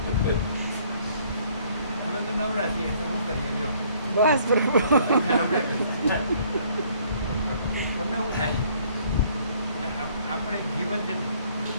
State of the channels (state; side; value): inverted; both; correlation -0.61